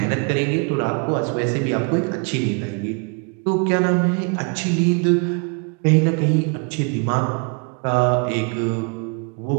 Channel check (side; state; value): left; quieter; 35.9 dB